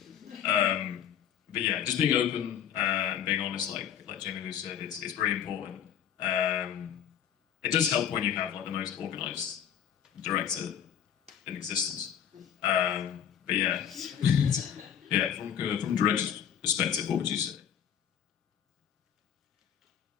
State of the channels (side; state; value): right; quieter; 9.3 dB